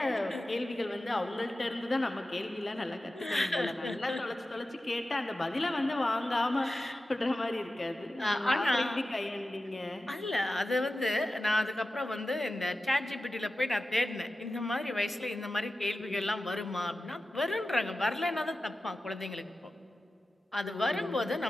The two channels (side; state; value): both; normal; correlation 0.94